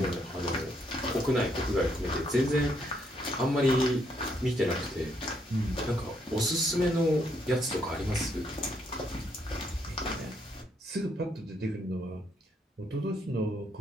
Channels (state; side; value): normal; both; correlation 0.73